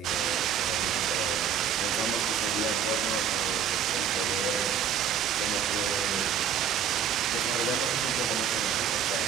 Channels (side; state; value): left; quieter; 7.9 dB